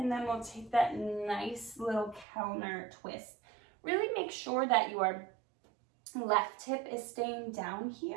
then we'll take that nice little counter twist. Really make sure that your left hip is staying down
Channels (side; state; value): left; drops out; at 2.2 s